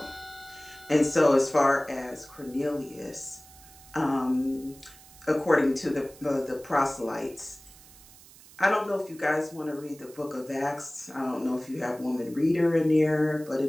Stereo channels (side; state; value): right; noise; hiss, 22 dB below the sound